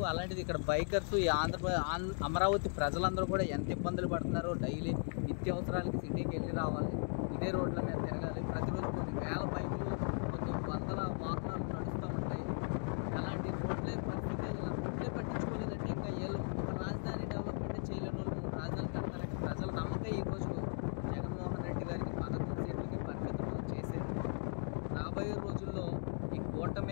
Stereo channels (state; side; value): silent; right; 53 dB below the other